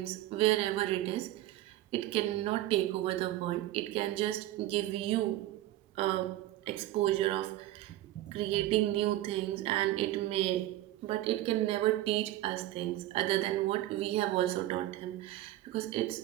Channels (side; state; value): left; quieter; 15.1 dB